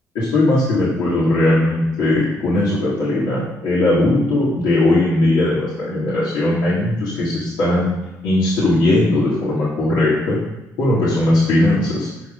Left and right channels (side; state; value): both; normal; correlation 0.76